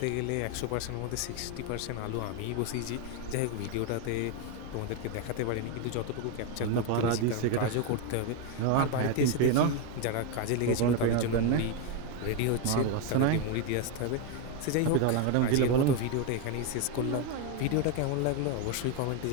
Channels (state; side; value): different; both; correlation 0.02